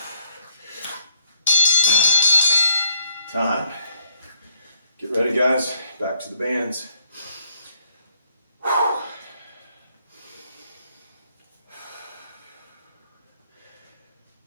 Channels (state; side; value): inverted; both; correlation -0.70